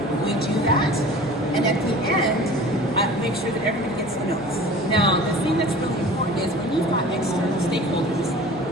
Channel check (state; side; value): noise; right; hum, 24 dB below the sound